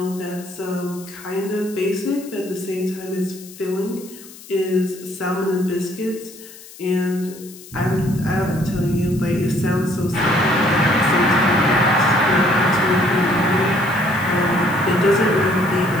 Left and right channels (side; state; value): left; noise; hiss, 19 dB below the sound